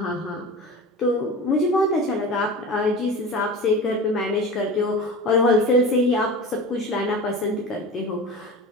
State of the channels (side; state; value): both; normal; correlation 0.32